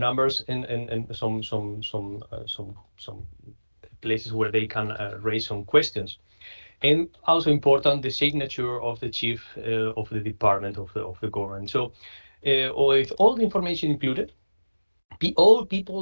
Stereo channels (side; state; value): both; inverted; correlation -1.00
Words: and some places where they can raise some questions. And also important, the signature of the chief of the department of the government. So with all the information included, all